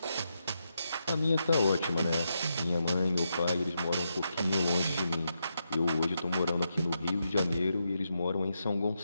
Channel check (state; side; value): inverted; both; correlation -0.84